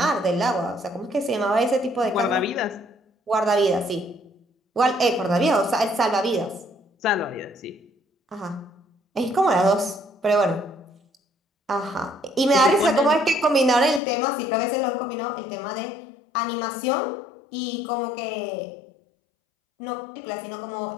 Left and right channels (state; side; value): drops out; right; at 14.0 s